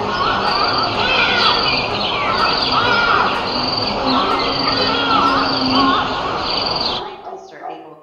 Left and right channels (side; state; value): both; identical; correlation 1.00